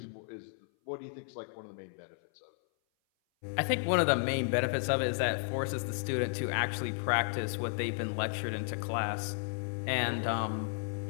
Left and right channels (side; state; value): right; silent; 56 dB below the other